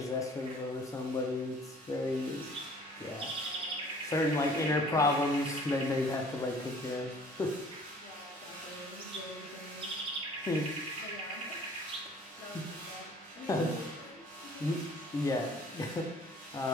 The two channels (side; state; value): both; normal; correlation 0.52